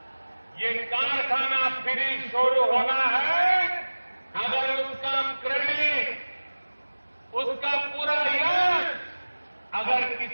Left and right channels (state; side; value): inverted; both; correlation -1.00